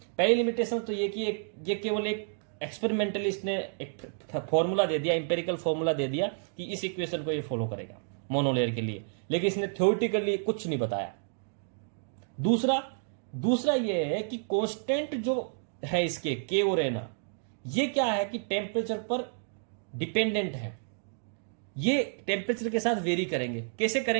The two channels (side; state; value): left; silent; digital silence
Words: पहली लिमिटेशन तो ये कि ये केवल एक एक्सपेरिमेंटली इसने एक फॉर्मूला दे दिया, इंपेरिकल फॉर्मूला दे दिया कि इस इक्वेशन को ये फॉलो करेगा मोनोलेयर के लिए, लेकिन इसने थ्योरेटिकली कुछ नहीं बताया। दूसरा ये है कि कांस्टेंट जो है इसके के और एन, ये क्या है कि टेम्परेचर पर डिपेंडेंट है। ये टेम्परेचर के साथ वेरी करेंगे। कैसे